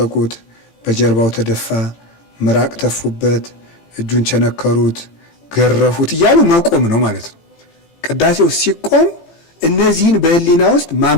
በጀርባው ተደፋ፣ ምራቅ ተፉበት፣ እጁን ቸነከሩት፣ ገረፉት እያሉ መቆም ነው ማለት ነው። ቅዳሴው ሲቆም እነዚህን በህሊና ውስጥ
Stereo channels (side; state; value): right; late; 18 ms